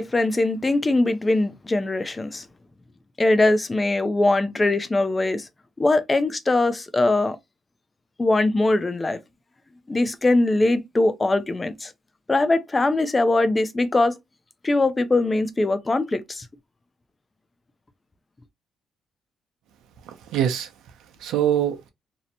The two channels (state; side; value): normal; both; correlation 0.91